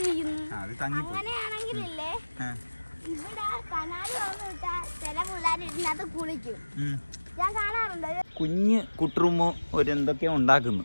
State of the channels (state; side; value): inverted; both; correlation -1.00